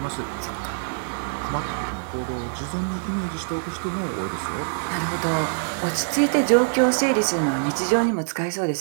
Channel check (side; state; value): left; silent; 62 dB below the other